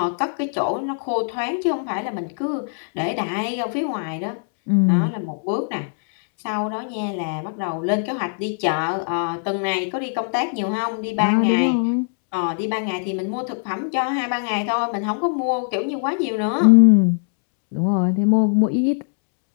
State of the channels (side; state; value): right; silent; 64 dB below the other